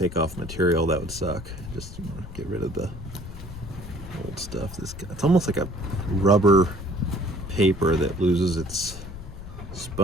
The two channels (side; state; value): left; noise; rumble, 12 dB below the sound